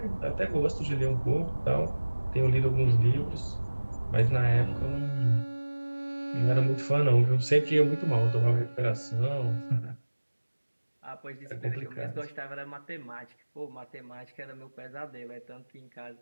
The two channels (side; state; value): both; inverted; correlation -1.00